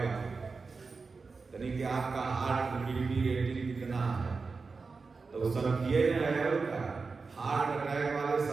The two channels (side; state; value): left; quieter; 4.4 dB